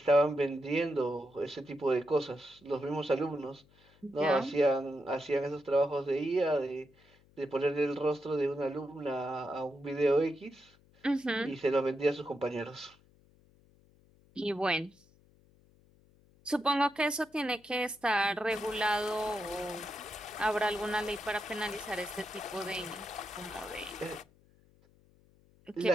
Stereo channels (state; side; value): noise; left; hum, 30 dB below the sound